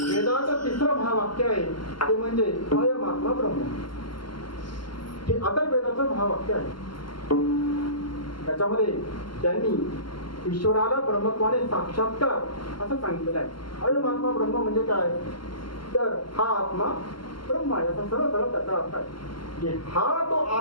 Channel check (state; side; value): late; right; 0.72 ms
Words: वेदाचं तिसरं महावाक्य आहे ते म्हणजे अयमात्मा ब्रह्म. हे अथर्ववेदाचं महावाक्य आहे. त्याच्यामध्ये त्यांनी ईश्वराला ब्रह्मत्वाने साक्षात्कार असं सांगितलेलं आहे. अयमात्मा ब्रह्म म्हणजे काय, तर हा आत्मा ब्रह्म आहे असा सरळ सरळ त्याचा अर्थ आहे. हा तो